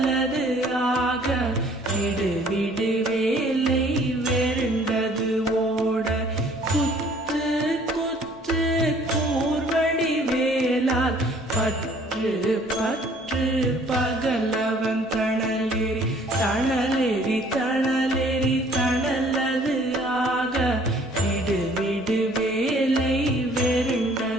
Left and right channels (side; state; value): both; normal; correlation 0.57